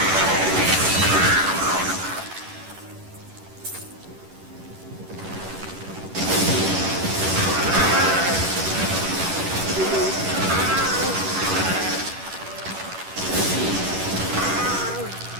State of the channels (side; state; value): left; late; 11 ms